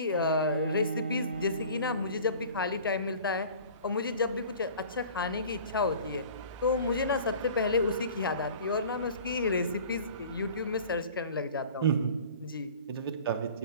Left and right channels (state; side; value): inverted; both; correlation -0.44